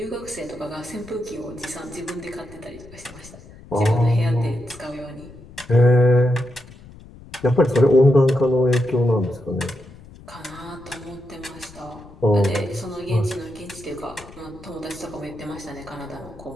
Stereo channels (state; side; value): noise; left; rumble, 20 dB below the sound